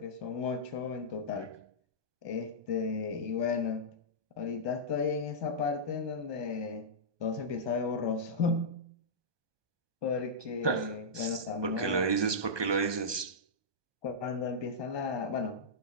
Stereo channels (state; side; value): late; left; 1.2 ms